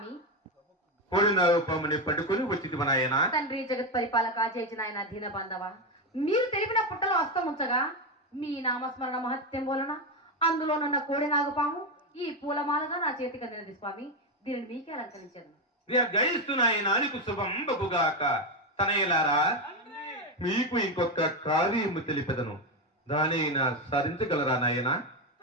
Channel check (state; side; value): normal; both; correlation 0.10